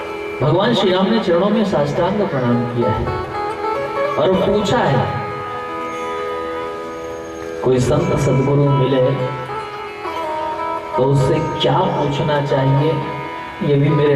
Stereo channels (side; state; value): both; identical; correlation 1.00